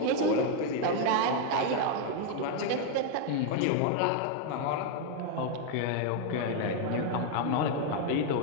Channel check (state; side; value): different; both; correlation 0.00